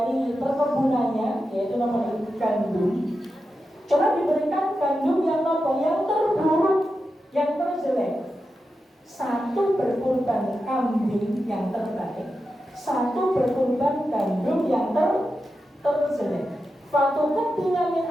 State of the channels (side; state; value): both; normal; correlation 0.90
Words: perkebunannya, yaitu namanya gandum. Coba diberikan gandum yang terburuk, yang terjelek. Satu berkorban kambing yang terbaik, satu berkorban gandum yang terjelek. Fatuqub bila min